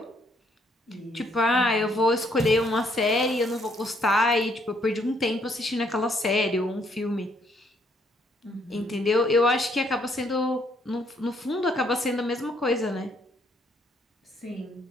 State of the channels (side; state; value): both; normal; correlation 0.69